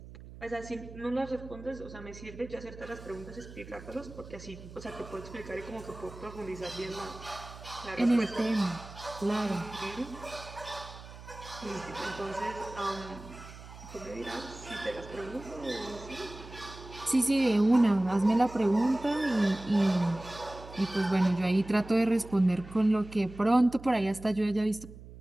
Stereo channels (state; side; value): noise; right; hum, 16 dB below the sound